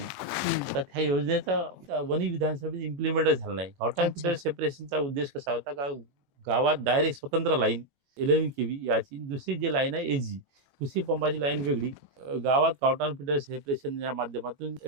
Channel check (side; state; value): left; late; 21 ms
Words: तर त्या योजनेचा वणी विधानसभेत इम्प्लिमेंट झाला नाही. गावठाण फिडर सेपरेशनचा उद्देश कसा होता का गावात डायरेक्ट स्वतंत्र लाईन 11 केव्ही याची, दुसरी जी लाईन आहे एजी कृषी पंपाची लाईन वेगळी, गावात गावठाण फिडर सेपरेशनच्या माध्यमातून